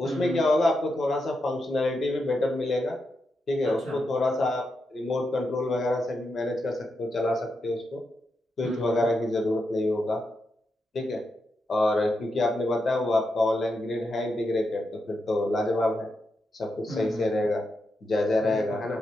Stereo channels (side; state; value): both; normal; correlation 0.85